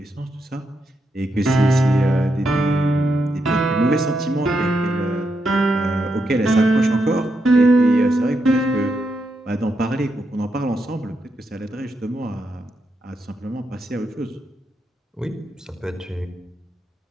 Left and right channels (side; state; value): both; normal; correlation 0.82